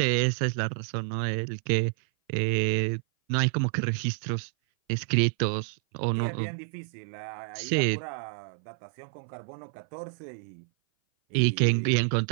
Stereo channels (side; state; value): left; silent; 57 dB below the other